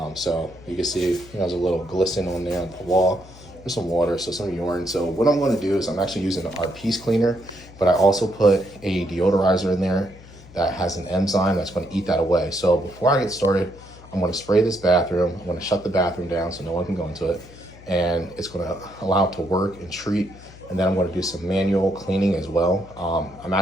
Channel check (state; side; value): noise; left; hum, 20 dB below the sound